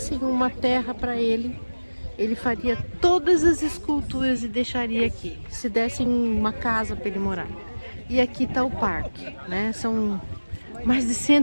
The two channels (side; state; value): both; inverted; correlation -1.00